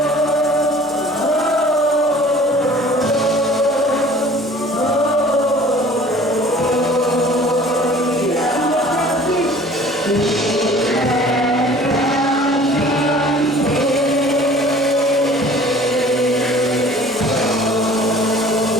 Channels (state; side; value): normal; both; correlation 0.48